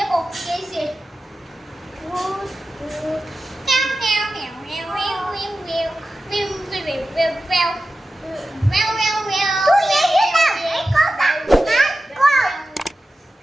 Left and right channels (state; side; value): normal; both; correlation 0.93